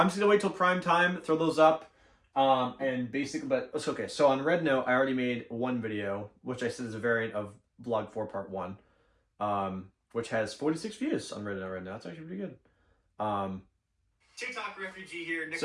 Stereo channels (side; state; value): both; identical; correlation 1.00